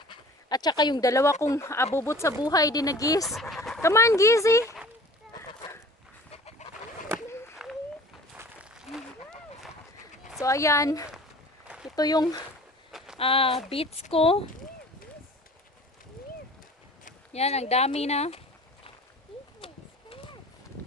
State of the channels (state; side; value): normal; both; correlation 0.45